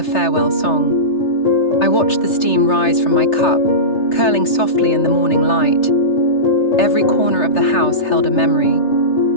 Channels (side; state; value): right; late; 3.3 ms